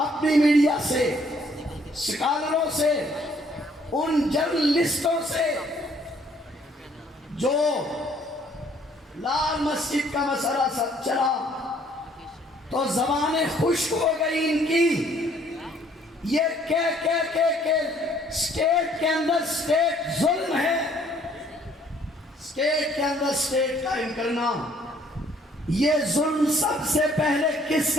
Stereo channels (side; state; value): both; normal; correlation 0.62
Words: میڈیا سے، سکالروں سے، ان جرنلسٹوں سے جو لال مسجد کا مسئلہ سب چلا تو زبانیں خشک ہو گئی ان کی، یہ کہ اسٹیٹ کے اندر اسٹیٹ ظلم ہے، اسٹیٹ کے اندر اسٹیٹ قائم کرنا۔ یہ ظلم سب سے پہلے کس